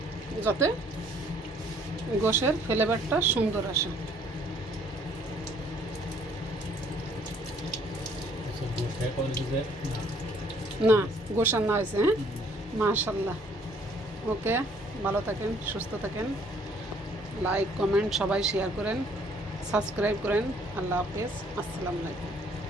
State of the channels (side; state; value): both; normal; correlation 0.61